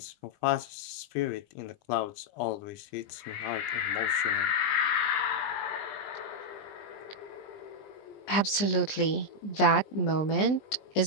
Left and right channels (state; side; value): late; right; 20 ms